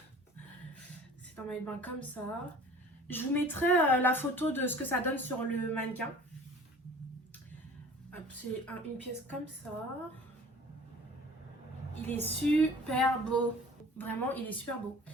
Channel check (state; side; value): normal; both; correlation 0.46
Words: C'est un maillot de bain comme ça. Je vous mettrai la photo de ce que ça donne sur le mannequin. C'est une pièce comme ça. Il est super beau. Vraiment, il est super beau.